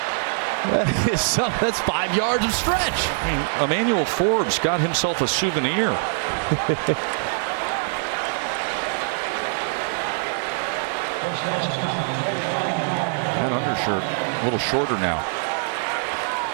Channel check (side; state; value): left; silent; 63 dB below the other